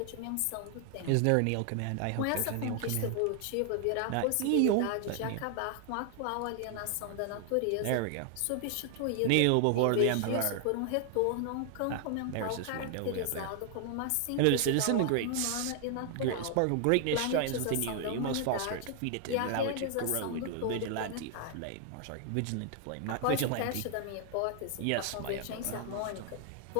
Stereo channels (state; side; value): different; both; correlation 0.00